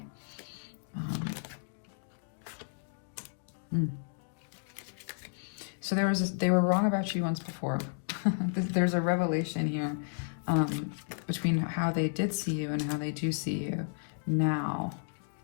So they were wrong about you once before. There's a revelation here. Between how they did see you and how they do see you now.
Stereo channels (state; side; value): silent; right; digital silence